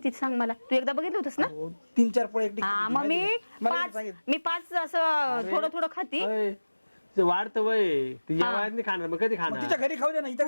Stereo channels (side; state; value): both; inverted; correlation -1.00